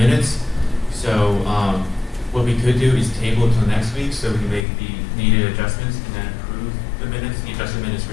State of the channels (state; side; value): drops out; right; at 4.7 s